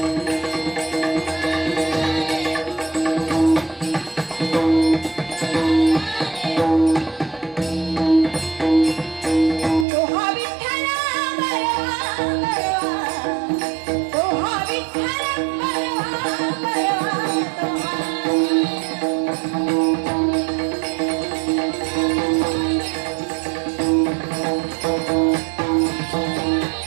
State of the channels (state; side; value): drops out; left; at 9.9 s